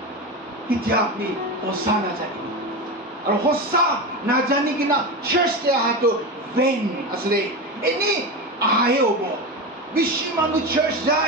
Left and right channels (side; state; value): both; normal; correlation 0.20